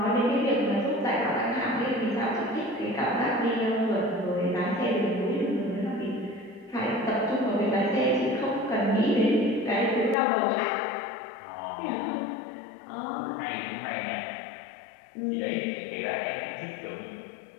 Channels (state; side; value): drops out; right; at 10.2 s